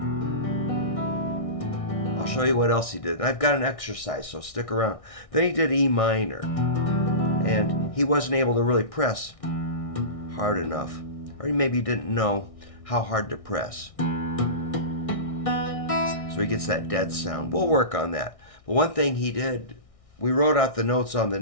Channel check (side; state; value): right; late; 1.6 ms